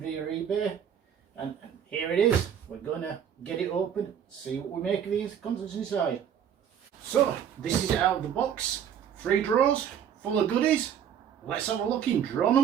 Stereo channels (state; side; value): quieter; left; 8.8 dB